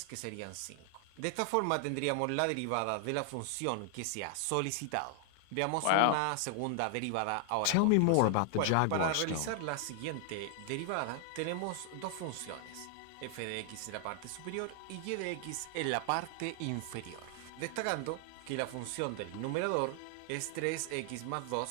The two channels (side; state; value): both; different; correlation 0.00